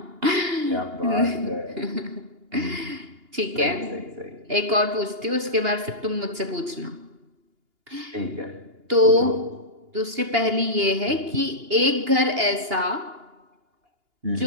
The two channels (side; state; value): left; late; 2.8 ms